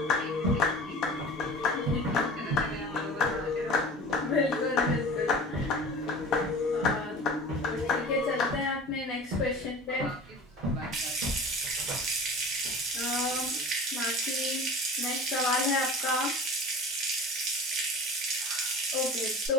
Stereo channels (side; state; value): both; normal; correlation 0.38